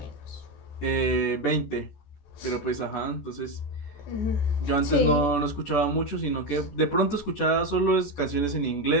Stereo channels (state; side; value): late; right; 14 ms